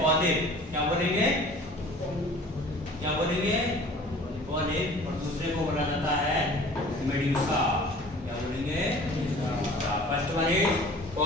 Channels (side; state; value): both; normal; correlation 0.46